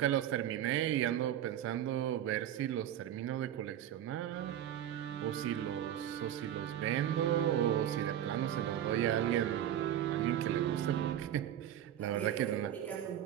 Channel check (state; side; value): quieter; left; 11.0 dB